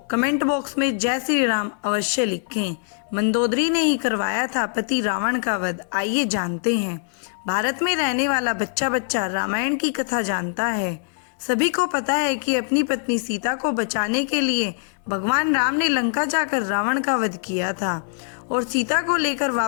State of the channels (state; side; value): silent; right; digital silence